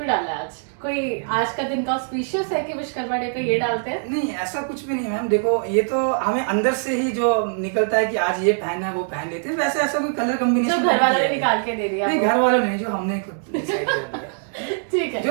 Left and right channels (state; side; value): silent; left; digital silence